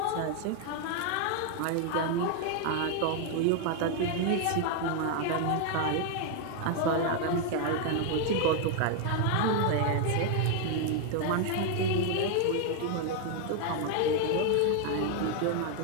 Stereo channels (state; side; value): different; both; correlation 0.01